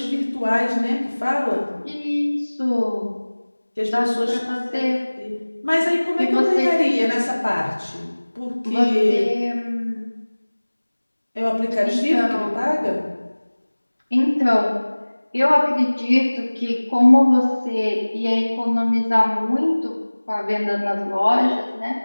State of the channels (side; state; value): both; inverted; correlation -1.00